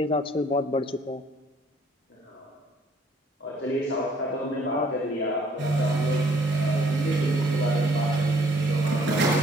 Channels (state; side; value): normal; both; correlation 0.62